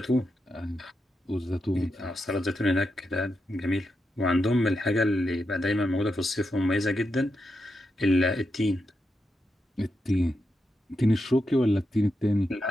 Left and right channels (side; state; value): both; normal; correlation 0.85